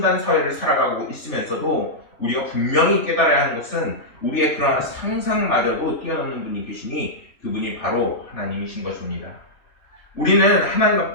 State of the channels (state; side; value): late; right; 3.4 ms